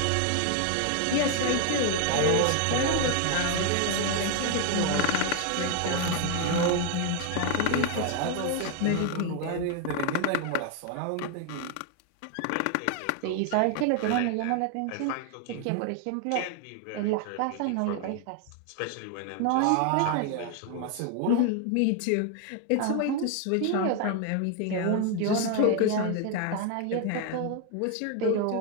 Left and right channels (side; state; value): both; different; correlation 0.01